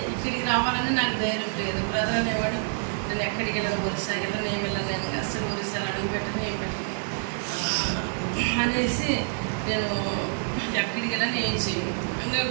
రావాలని నాకు ధైర్యం లేదు. బ్రదర్ అనేవాడు నేను ఎక్కడికి వెళ్ళను, ఒరిస్సా కదా నేను వెళ్ళను, అసలు ఒరిస్సాలో అడుగు పెట్టను ఏం పెట్టను అనేసి నేను ఎక్కడికి వెళ్ళని ఏం చేయను ఇంకా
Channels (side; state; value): left; silent; 60 dB below the other